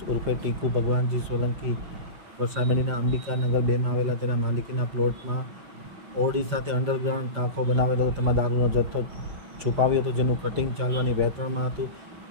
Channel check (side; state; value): left; late; 5.7 ms